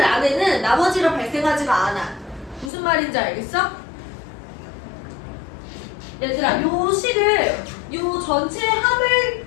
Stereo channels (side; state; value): right; drops out; at 2.7 s